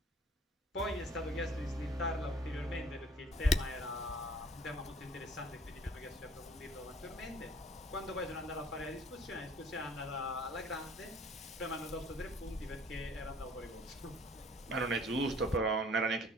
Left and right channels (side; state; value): both; normal; correlation 0.54